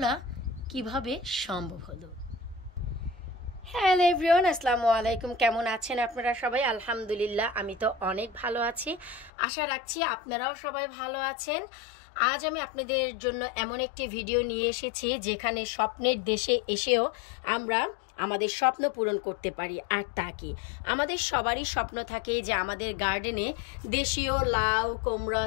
কিভাবে সম্ভব হলো। হ্যালো এভরিওয়ান, আসসালামু আলাইকুম। কেমন আছেন আপনারা সবাই? আলহামদুলিল্লাহ, আমি তো অনেক ভালো আছি। আশা রাখছি আপনারাও সবাই ভালো আছেন। আজ আমি আপনাদের জন্য এমন একটি ভিডিও নিয়ে এসেছি যেখানে স্বপ্নের দেশে এসেও আমরা আমাদের স্বপ্ন পূরণ করতে পারি। আর তা কি, আমাদের সবারই স্বপ্ন থাকে যে আমাদের গার্ডেনে দেশীয় লাউ, কুমড়া,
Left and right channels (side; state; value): right; drops out; at 9.3 s